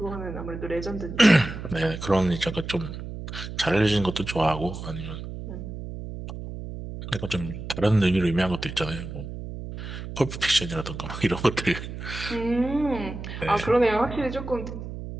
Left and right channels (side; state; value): right; noise; hum, 9 dB below the sound